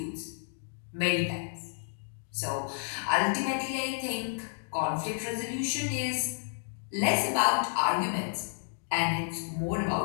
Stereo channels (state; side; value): silent; right; digital silence